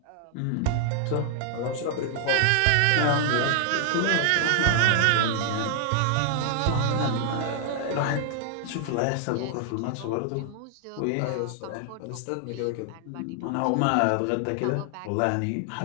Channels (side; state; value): both; different; correlation 0.00